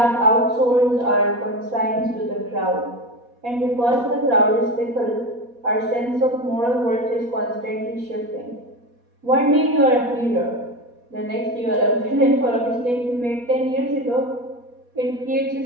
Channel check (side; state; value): left; late; 4.2 ms